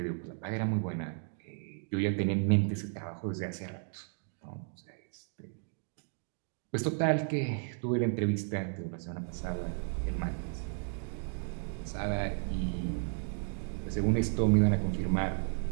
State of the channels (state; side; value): silent; left; 55 dB below the other